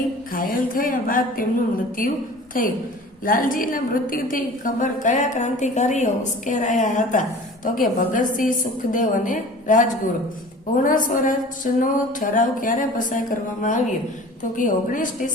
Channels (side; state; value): both; normal; correlation 0.42